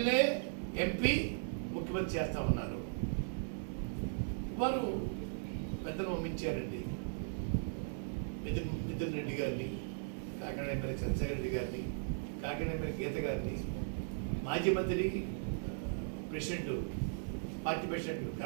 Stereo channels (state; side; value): silent; left; 53 dB below the other